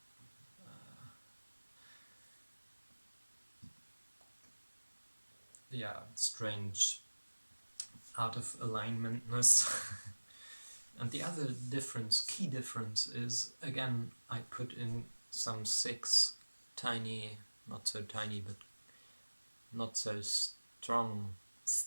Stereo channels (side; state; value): both; inverted; correlation -1.00